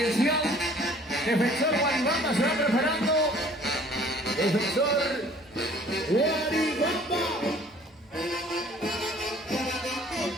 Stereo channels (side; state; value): both; normal; correlation 0.53